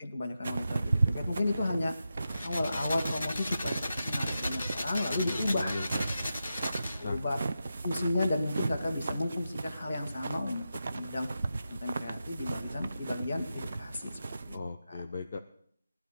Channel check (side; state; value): both; inverted; correlation -0.89